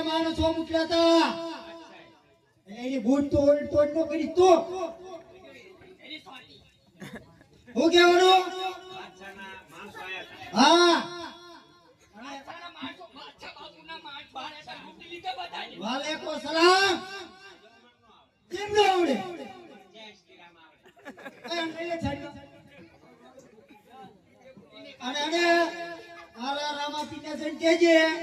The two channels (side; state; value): both; identical; correlation 1.00